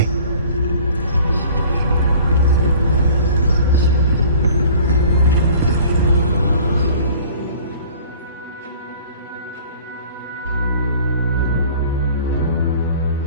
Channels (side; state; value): both; inverted; correlation -0.48